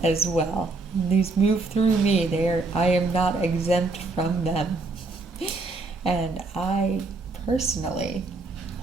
as well. These move through me. I am not exempt from them. And I personally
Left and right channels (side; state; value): left; quieter; 3.5 dB